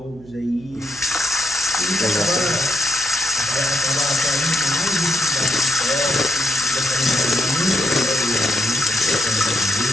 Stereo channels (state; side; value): noise; right; hum, 21 dB below the sound